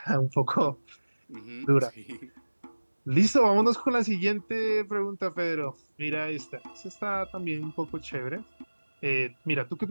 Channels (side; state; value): both; inverted; correlation -1.00